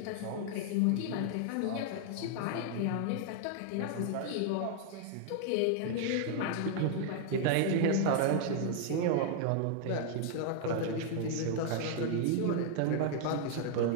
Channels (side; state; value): both; different; correlation 0.00